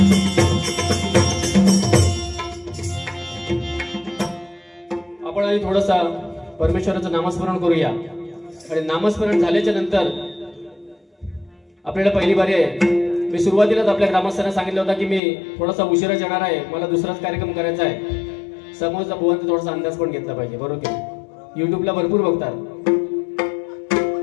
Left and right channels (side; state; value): right; drops out; at 15.2 s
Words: आपण आधी थोडंसा परमेश्वराचं नामस्मरण करूया आणि नामस्मरण झाल्याच्या नंतर आपल्याला पहिली बारी आहे। मी सुरुवातीलाच आपल्या ग्रामस्थांना सांगितलं होतं की मी थोडासा उशिरा येणार आहे, मला दुसराच कार्यक्रम करायचा आहे। समोरचा भुवनचा थोडासा अंदाज पण घेतला पाहिजे, बरोबर की? युट्यूबला भरपूर बघतात,